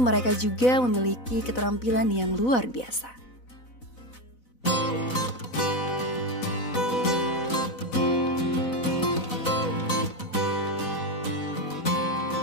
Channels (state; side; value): late; right; 4.0 ms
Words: juga memiliki keterampilan yang luar biasa.